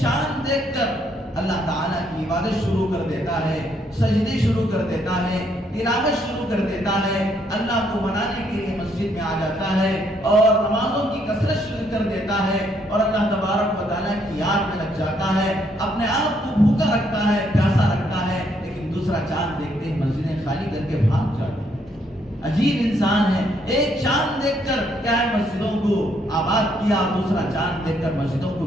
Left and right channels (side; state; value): both; normal; correlation 0.71